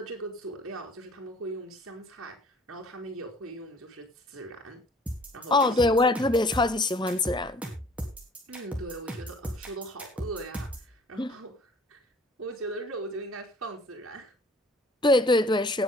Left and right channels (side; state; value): both; normal; correlation 0.54